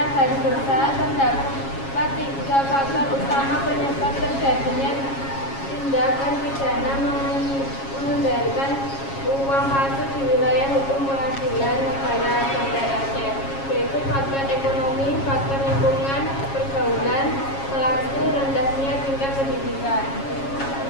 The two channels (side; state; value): right; late; 7.3 ms